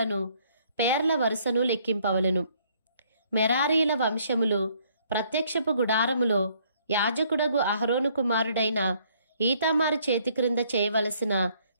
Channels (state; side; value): inverted; both; correlation -0.65